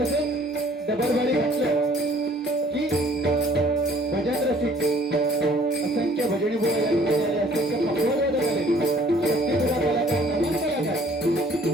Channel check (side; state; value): both; normal; correlation 0.57